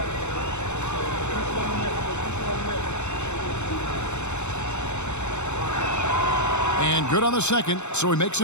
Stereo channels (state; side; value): late; right; 0.82 ms